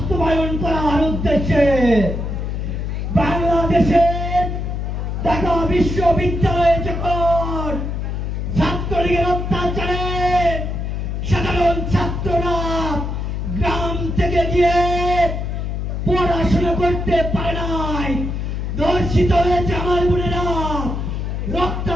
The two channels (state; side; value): noise; left; hum, 3 dB below the sound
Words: করার উদ্দেশ্যে। বাংলাদেশের ঢাকা বিশ্ববিদ্যালয়ে যখন ছাত্রলীগের অত্যাচারে সাধারণ ছাত্ররা গ্রাম থেকে গিয়ে পড়াশোনা করতে পারে নাই, ধর্ষিত হয়েছে আমার বোনেরা,